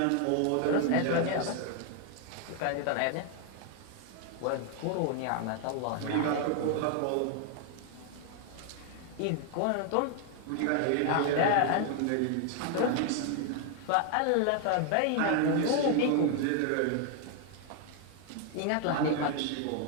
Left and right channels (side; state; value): both; different; correlation 0.00